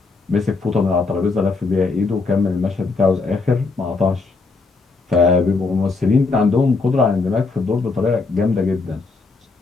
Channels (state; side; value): quieter; right; 4.0 dB